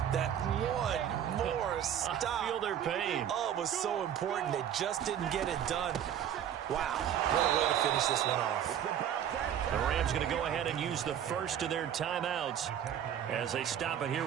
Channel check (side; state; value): left; quieter; 9.8 dB